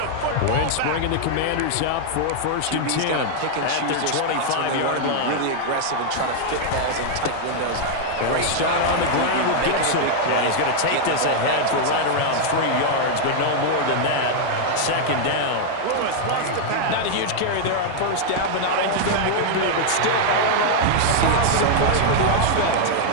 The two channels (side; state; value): both; different; correlation 0.00